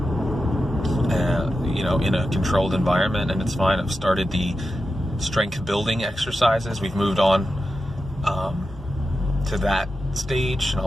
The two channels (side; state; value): both; normal; correlation 0.90